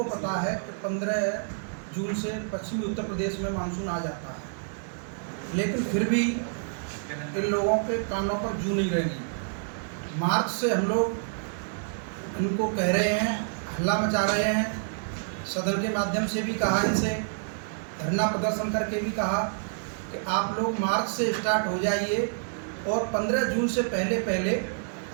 पता है कि 15 जून से पश्चिमी उत्तर प्रदेश में मानसून आ जाता है, लेकिन फिर भी इन लोगों के कानों पर जू नहीं रहेंगी। मार्च से हम लोग इनको कह रहे हैं, हल्ला मचा रहे हैं, सदन के माध्यम से भी कहा, इनसे धरना प्रदर्शन करके भी कहा कि आप लोग मार्च से स्टार्ट हो जाइए और 15 जून से पहले पहले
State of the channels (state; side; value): silent; left; digital silence